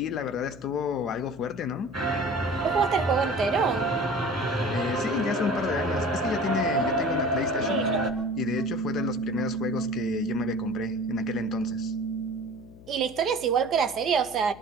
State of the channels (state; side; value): noise; left; hum, 20 dB below the sound